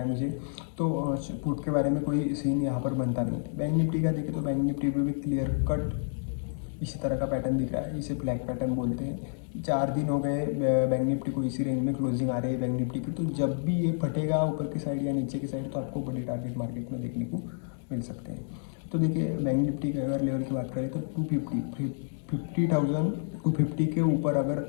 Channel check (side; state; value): right; silent; digital silence